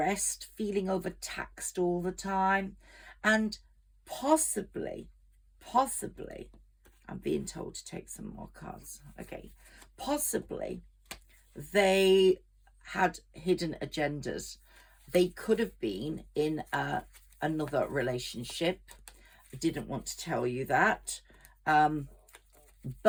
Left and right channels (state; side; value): identical; both; correlation 1.00